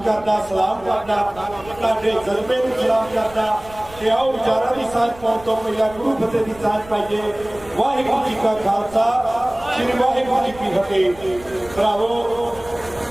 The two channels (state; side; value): noise; right; rumble, 20 dB below the sound